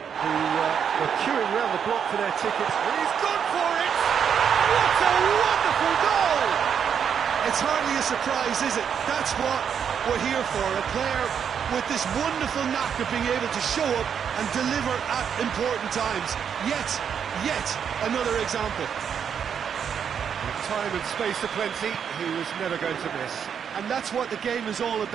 were queuing around the block for their tickets, and he's gone for it! What a wonderful goal! It's hardly a surprise, is it? That's what we're here for, a player with this wonderful knack of being able to show up and deliver at important times. Yet another example. With time and space aplenty, he was never going to miss. And that's what the game is all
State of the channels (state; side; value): quieter; left; 7.7 dB